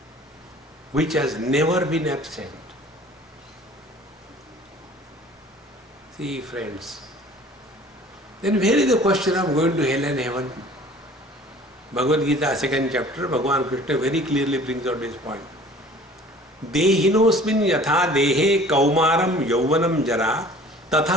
which has never been absent. See, friends, then where is the question of going to hell and heaven? Bhagavad Gita, 2nd chapter, Bhagavan Krishna very clearly brings out this point. Dehinosmin yatha dehe kaumaram yauvanam jara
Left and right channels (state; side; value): normal; both; correlation 0.48